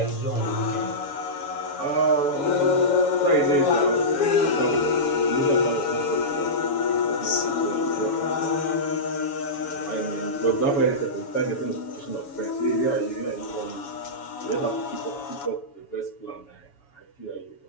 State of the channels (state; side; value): late; right; 7.1 ms